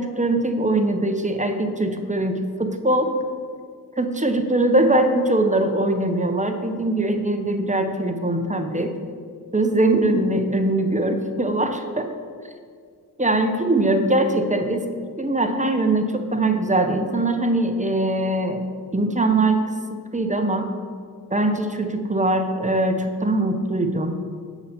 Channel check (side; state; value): both; normal; correlation 0.35